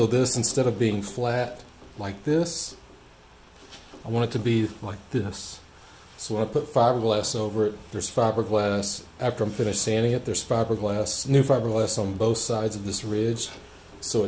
this, instead of being flat like this, I want it to be like this. So when I put fiberglass over it, there's fiberglass. After I'm finished sanding it, there's fiberglass, new fiberglass on both sides of this ridge. So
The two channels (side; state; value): both; identical; correlation 1.00